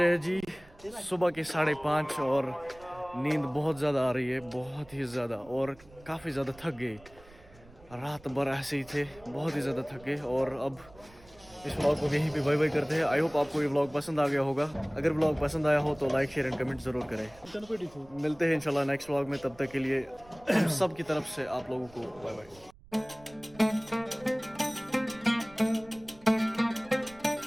हैं जी सुबह के 5:30 और नींद बहुत ज़्यादा आ रही है, बहुत ही ज़्यादा, और काफ़ी ज़्यादा थक गए। रात भर ऐसे ही थे, बहुत ही ज़्यादा थक गए। और अब इस व्लॉग को यहीं पे बाय बाय करते हैं। आई होप आपको ये व्लॉग पसंद आ गया होगा। अगर व्लॉग पसंद आया हो तो लाइक शेयर एंड कमेंट ज़रूर करें। मिलते हैं इंशाल्लाह नेक्स्ट व्लॉग में, तब तक के लिए सब की तरफ से आप लोगों को बाय बाय।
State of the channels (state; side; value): noise; right; rumble, 24 dB below the sound